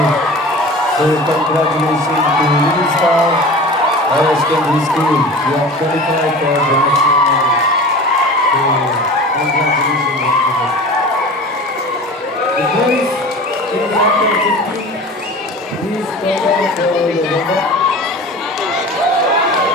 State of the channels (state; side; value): normal; both; correlation 0.37